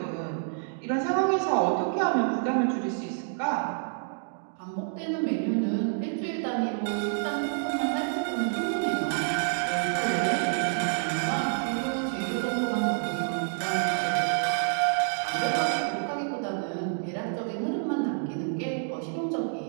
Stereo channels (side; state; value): left; silent; digital silence